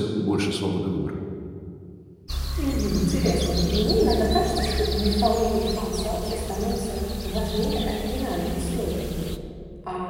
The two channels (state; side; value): identical; both; correlation 1.00